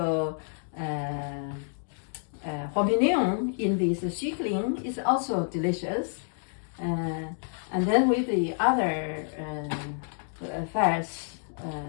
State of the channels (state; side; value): silent; right; digital silence